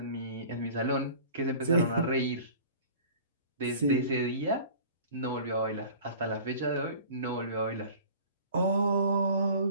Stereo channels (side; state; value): both; inverted; correlation -0.43